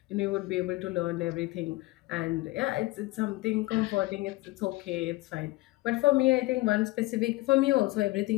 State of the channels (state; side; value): quieter; right; 20.3 dB